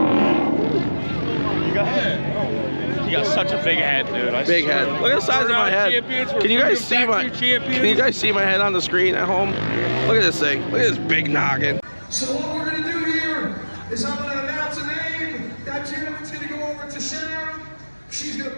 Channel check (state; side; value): inverted; both; correlation -1.00